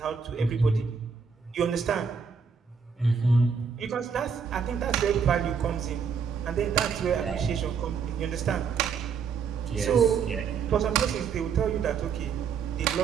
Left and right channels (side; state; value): left; quieter; 6.2 dB